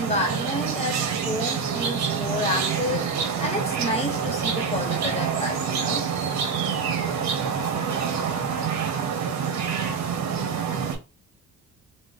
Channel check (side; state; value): left; quieter; 4.5 dB